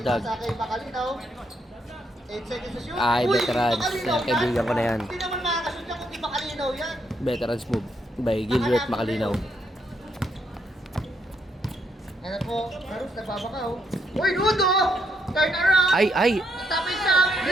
Sa kay Bacalinaw. 8 seconds to shoot. Ay, Uy, veterans. Bacalinaw Yan, kaibigan ko na yan. Hindi naman makakashoot yan kung di Bacalinaw yan. Veterans move by Gilbert Macalinaw. Ano po, Carus, nagbabakaw. Uy, Ludo! Turn around! Ay! Tapos na!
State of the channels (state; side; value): normal; both; correlation 0.76